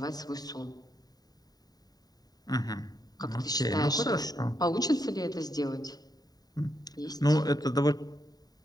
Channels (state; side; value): late; right; 0.18 ms